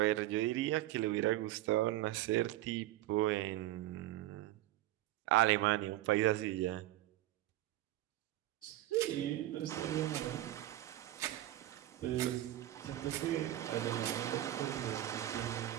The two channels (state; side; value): quieter; left; 14.9 dB